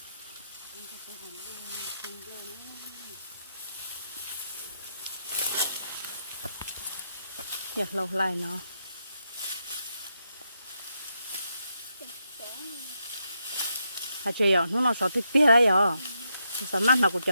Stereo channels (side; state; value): both; inverted; correlation -0.82